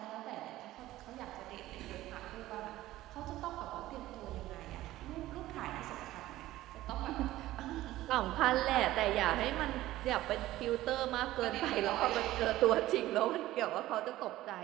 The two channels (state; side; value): quieter; left; 15.7 dB